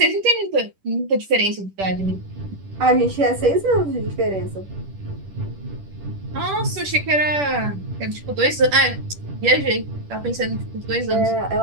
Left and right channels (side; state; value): left; late; 10 ms